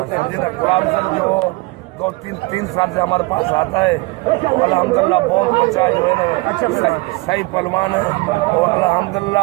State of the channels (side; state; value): left; quieter; 24.2 dB